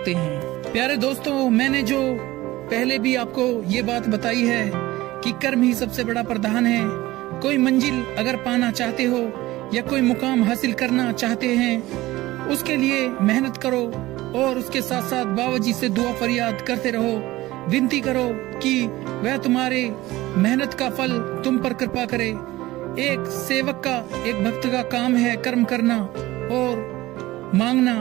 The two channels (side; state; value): left; quieter; 17.8 dB